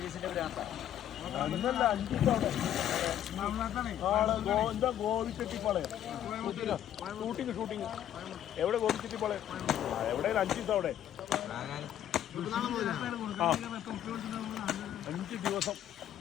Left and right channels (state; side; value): quieter; right; 11.0 dB